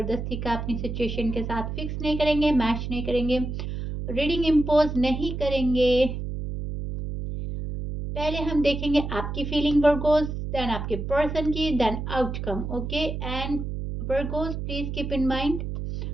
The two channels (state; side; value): noise; right; hum, 5 dB below the sound